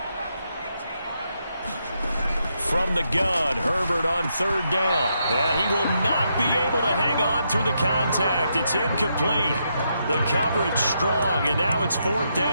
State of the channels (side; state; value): both; inverted; correlation -0.80